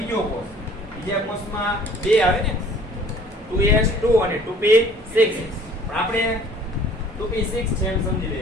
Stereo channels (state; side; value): normal; both; correlation 0.53